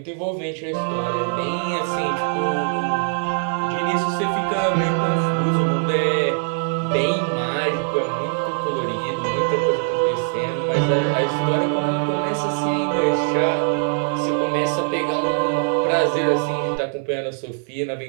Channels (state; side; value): silent; left; 56 dB below the other